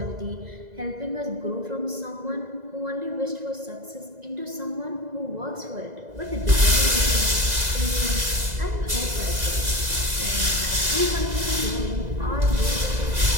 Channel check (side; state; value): left; late; 2.0 ms